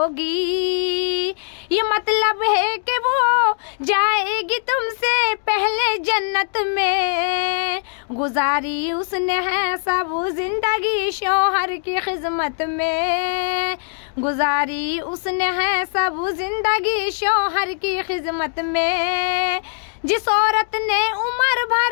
ये मतलब है कि वो जाएगी तुमसे पहले जन्नत में, गुजारी उसने है सब जिंदगी शौहर की खिदमत में, गुजारी उसने है सब जिंदगी शौहर की खिदमत में। जिस औरत ने उम्र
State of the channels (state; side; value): silent; right; digital silence